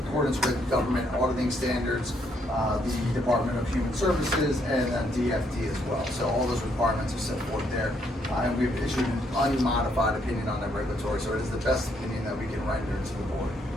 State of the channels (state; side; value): normal; both; correlation 0.72